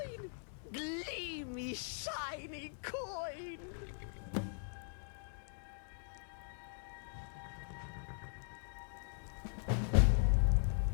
Gleamy, shiny coin.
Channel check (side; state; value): right; silent; digital silence